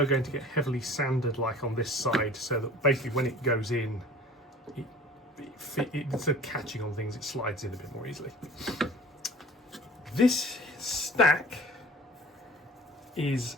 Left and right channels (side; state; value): both; normal; correlation 0.45